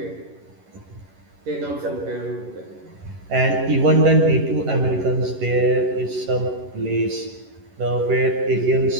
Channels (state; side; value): late; left; 11 ms